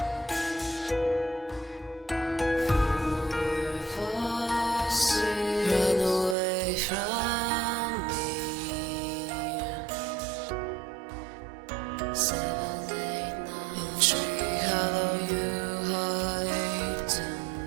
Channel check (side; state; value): left; drops out; at 6.4 s